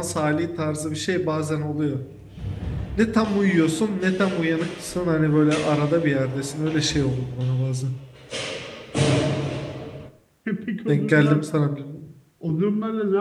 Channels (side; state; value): both; identical; correlation 1.00